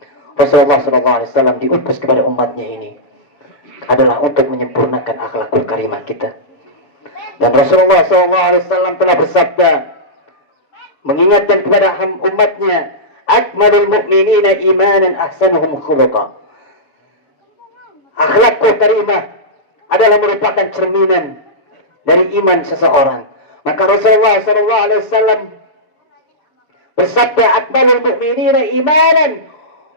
Rasulullah SAW diutus kepada umatnya ini adalah untuk menyempurnakan akhlakul karimah kita. Dan Rasulullah SAW telah bersabda mengingatkan kepada umatnya, akmalul mu'minina imanan ahsanuhum khuluqa. Akhlakul karimah adalah merupakan cerminan dari iman seseorang. Maka Rasulullah SAW bersabda, akmalul mu'minina imanan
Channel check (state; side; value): late; right; 6.9 ms